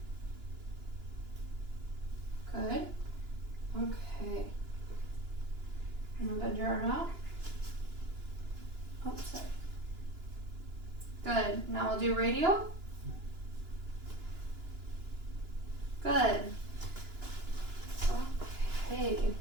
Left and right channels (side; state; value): left; late; 2.9 ms